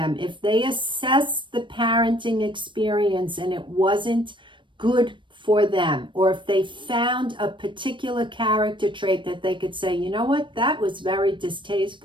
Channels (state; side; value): late; left; 0.24 ms